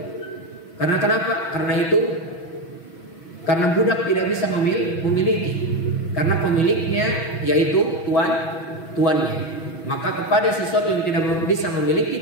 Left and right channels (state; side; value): late; right; 6.2 ms